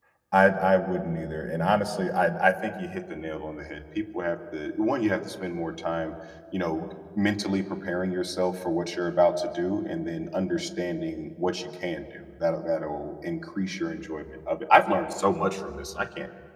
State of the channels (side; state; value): both; identical; correlation 1.00